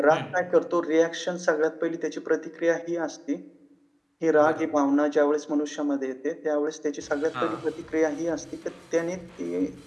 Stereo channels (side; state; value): both; identical; correlation 1.00